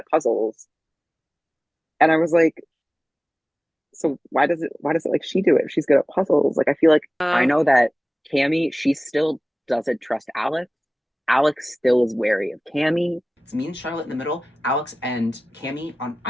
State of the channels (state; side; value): normal; both; correlation 0.97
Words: puzzles. And I was like, so why does it like she do it if she's good at puzzles? Like I feel like I know that Cammy, she still doesn't trust Alex. Alex still is wary of Cammy. It's me and Charlotte in the middle, Alex and Cammy on